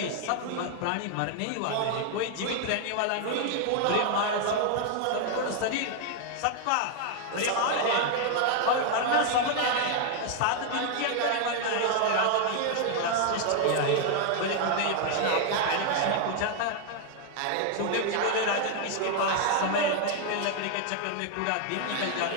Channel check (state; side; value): different; both; correlation 0.00